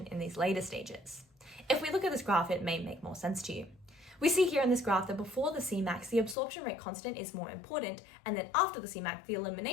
in these later stages. If we look at this graph, it may make more sense to you. We see here in this graph that before the Cmax, the absorption rate constant is more important, and then after the Cmax, the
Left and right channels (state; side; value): drops out; right; at 6.4 s